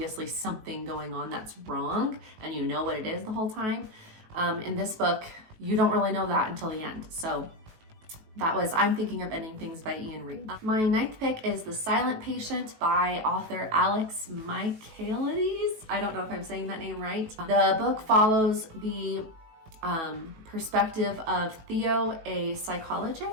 something going on that's wrong and you know what it is the whole time. In this book, you don't really know that until the end. So that was I'm Thinking of Ending Things by Reid. My 9th pick is The Silent Patient by author Alex Michaelides. I don't know if I'm saying that name right. The book follows the perspective of Theo, a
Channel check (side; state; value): left; late; 18 ms